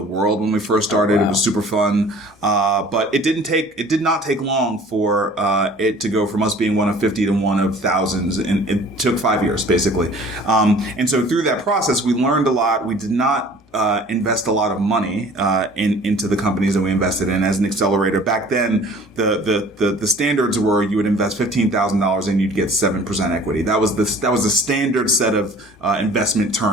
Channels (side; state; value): both; normal; correlation 0.49